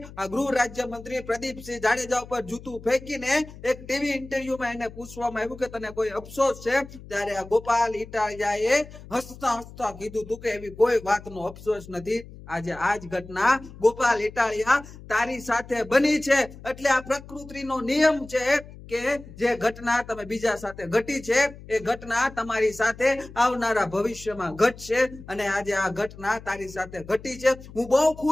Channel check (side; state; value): left; noise; hum, 17 dB below the sound